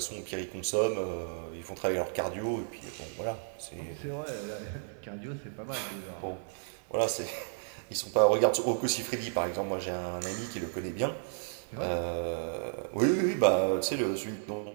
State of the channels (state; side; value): silent; left; digital silence